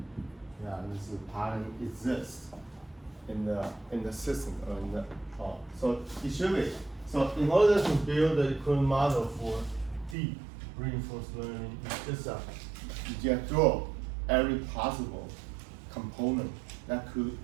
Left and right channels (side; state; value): left; drops out; at 10.2 s